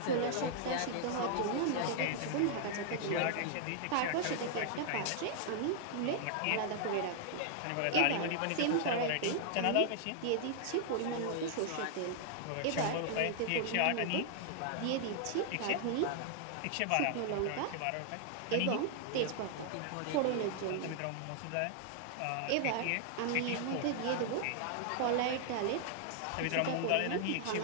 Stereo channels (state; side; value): different; both; correlation 0.00